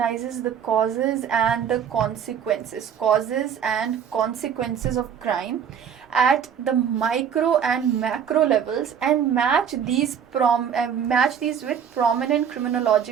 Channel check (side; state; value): left; quieter; 8.1 dB